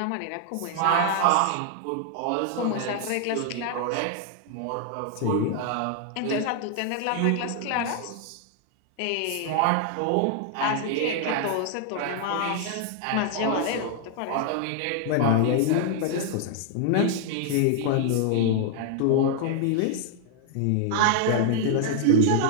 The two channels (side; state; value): both; different; correlation 0.00